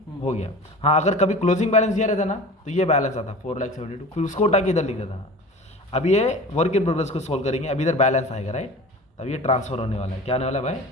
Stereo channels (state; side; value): normal; both; correlation 0.37